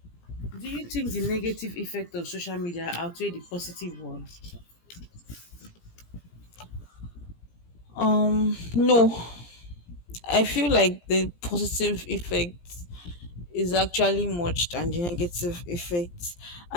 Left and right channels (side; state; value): right; late; 17 ms